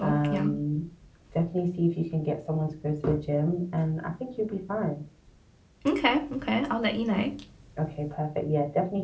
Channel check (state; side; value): identical; both; correlation 1.00